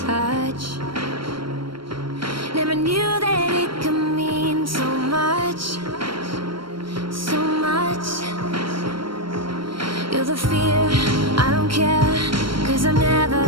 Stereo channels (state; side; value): late; left; 0.73 ms